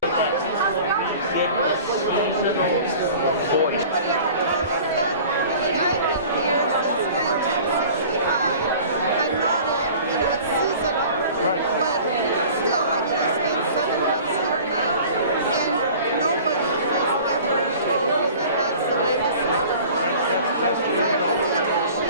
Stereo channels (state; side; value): inverted; both; correlation -0.44